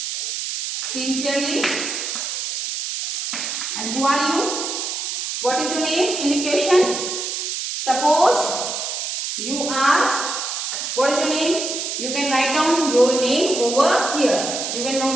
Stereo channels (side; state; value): right; noise; hiss, 4 dB below the sound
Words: sincerely. And who are you? What is your name in the question? Suppose you are, what is your name? You can write down your name over here. You can